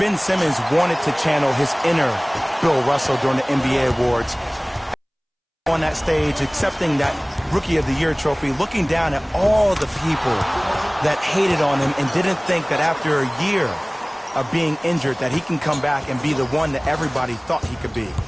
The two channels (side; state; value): both; identical; correlation 1.00